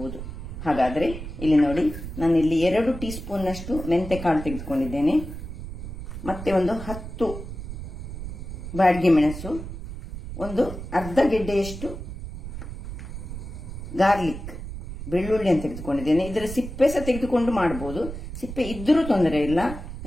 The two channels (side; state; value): right; noise; rumble, 9 dB below the sound